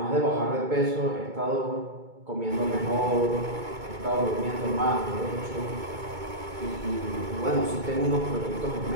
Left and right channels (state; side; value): late; left; 2.2 ms